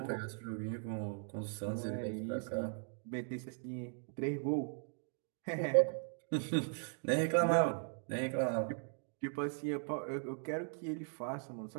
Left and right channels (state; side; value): silent; left; 52 dB below the other